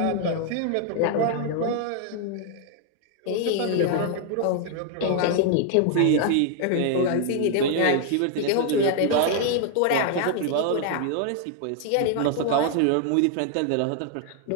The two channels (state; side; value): different; both; correlation 0.00